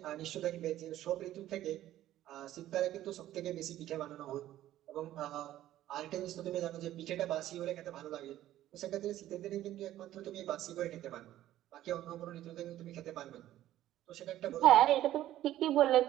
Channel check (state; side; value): quieter; left; 13.5 dB